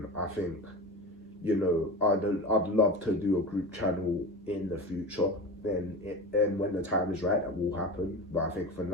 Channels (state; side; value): normal; both; correlation 0.28